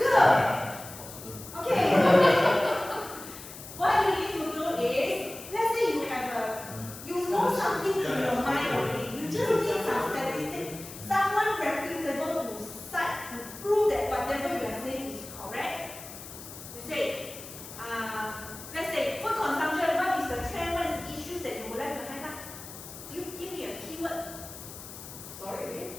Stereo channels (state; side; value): noise; left; hiss, 13 dB below the sound